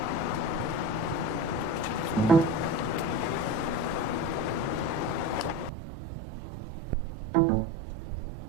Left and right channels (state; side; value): drops out; left; at 5.7 s